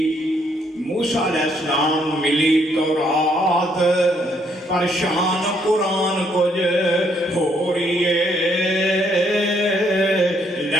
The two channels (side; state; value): both; normal; correlation 0.70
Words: السلام ملی تورات پر شان قرآن کچھ ہو رہی ہے.